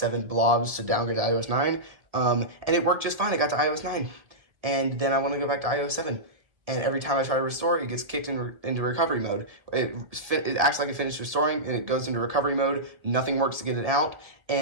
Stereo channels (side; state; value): left; late; 1.7 ms